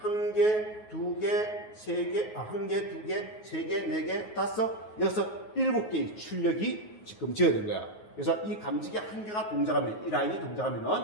1개, 2개, 3개, 1개, 2개, 3개, 4개, 5, 6, 7개의 출력이 지금 지어야 된 거야. 그래서 이 감지기 한 개가 동작하면, 이 라인이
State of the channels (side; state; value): right; late; 9.5 ms